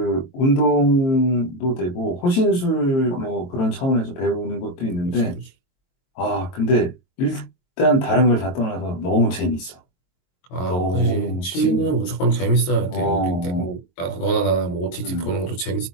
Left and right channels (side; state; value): right; late; 22 ms